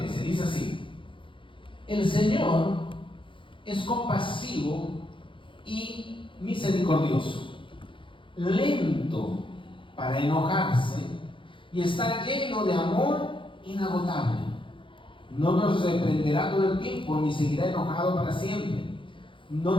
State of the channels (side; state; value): right; late; 0.25 ms